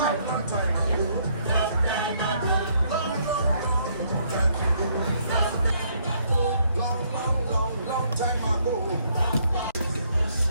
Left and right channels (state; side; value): inverted; both; correlation -0.69